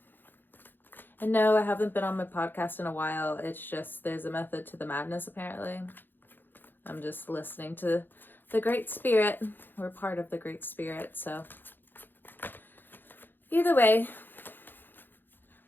And no, I haven't been on my podcast in a while. It's just there's a method to the madness, apparently. I'm just listening to the Great Spirit. We're part of the Great Spirit, so either way,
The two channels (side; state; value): right; late; 0.095 ms